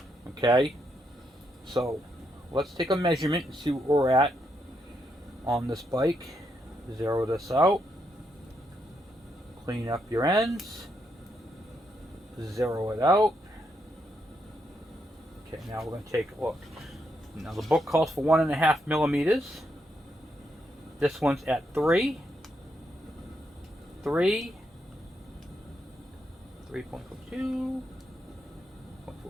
Okay? So let's take a measurement and see where we're at on this bike. Zero this out. Clean up your ends. Zero it out. Okay, now we're going to take a look. Now the book calls for 1.5 millimeters. This one's at 3. 3. 3.42.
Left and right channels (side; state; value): both; normal; correlation 0.79